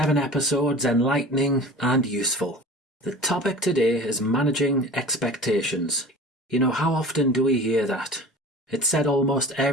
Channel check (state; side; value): normal; both; correlation 0.39